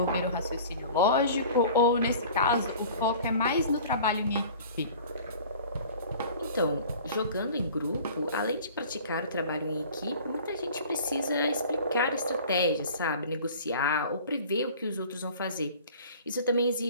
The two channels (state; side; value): inverted; both; correlation -0.44